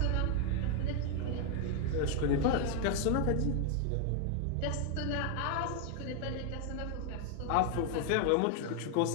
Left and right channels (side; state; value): both; different; correlation 0.01